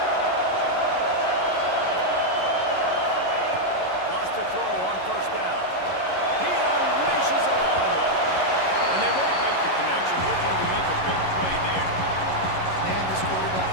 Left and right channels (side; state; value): right; late; 11 ms